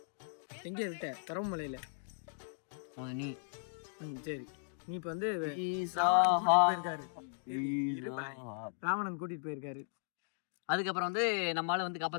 எங்க இருக்க? கரவமலையில நீ. சரி, நீ இப்ப வந்து போயிருக்காரு, ராவணன் கூட்டிட்டு போயிருக்காரு. அதுக்கப்புறம் வந்து நம்மளால வந்து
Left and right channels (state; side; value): silent; right; digital silence